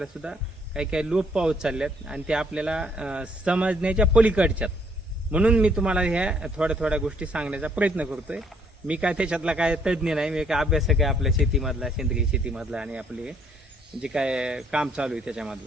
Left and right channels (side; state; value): both; normal; correlation 0.66